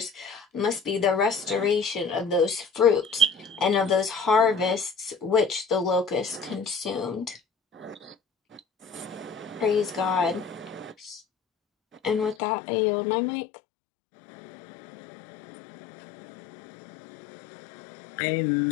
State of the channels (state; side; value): drops out; right; at 12.4 s